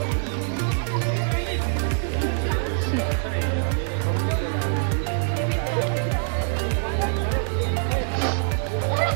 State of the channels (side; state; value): left; silent; 59 dB below the other